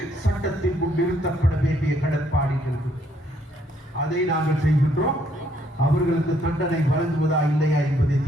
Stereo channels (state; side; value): normal; both; correlation 0.69